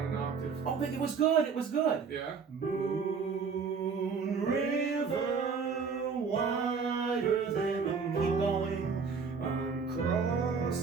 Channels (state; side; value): quieter; left; 5.6 dB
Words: an octave. Oh, but it was good. It was good. Yeah. Moon River, wider than a moon. Keep going. I'm